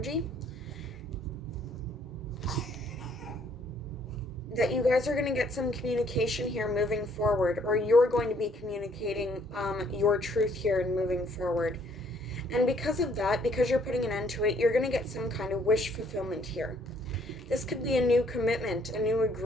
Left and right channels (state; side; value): normal; both; correlation 0.64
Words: that you guys are going to get some communication here moving forward, or you're going to be communicating your truth here and moving forward. And because of that, because you're putting an end to it, you're going to get some kind of wish fulfillment here. This could be a new commitment, a new